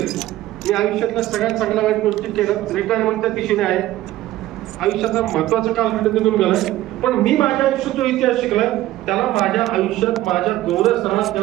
मी आयुष्यातल्या सगळ्यात चांगल्या वाईट गोष्टी केल्या. रिटायरमेंटच्या दिशेने आहे. आयुष्याचा महत्वाचा कालखंड निघून गेलाय. पण मी माझ्या आयुष्यात जो इतिहास शिकलाय त्याला माझ्या आयुष्यात माझ्या गौरव सणात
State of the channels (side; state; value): left; quieter; 15.2 dB